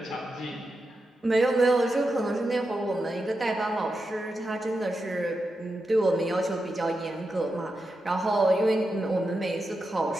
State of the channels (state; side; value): normal; both; correlation 0.88